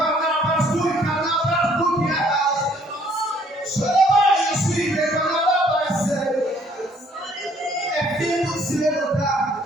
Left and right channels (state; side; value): normal; both; correlation 0.62